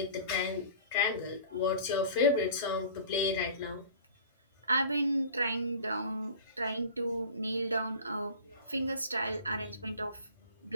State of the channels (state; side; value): inverted; both; correlation -0.42